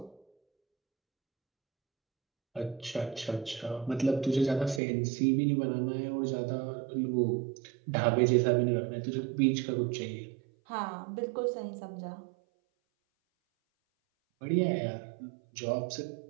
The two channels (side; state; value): left; drops out; at 4.8 s